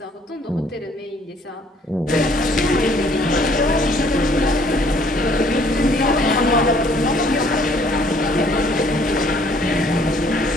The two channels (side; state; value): both; normal; correlation 0.61